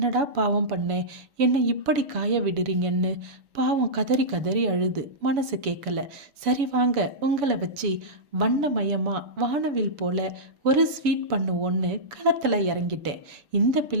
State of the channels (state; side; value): late; left; 7.0 ms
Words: பாவம் பண்ணேன், என்னை இப்படி காய விடுறீங்கன்னு பாவம் கதறி கதறி அழுது மனசு கேட்கல. சரி வாங்க, உங்களை வச்சு வண்ணமயமாக வானவில் போல ஒரு ஸ்வீட் பண்ணுவோன்னு களத்தில் இறங்கிட்டேன். இந்த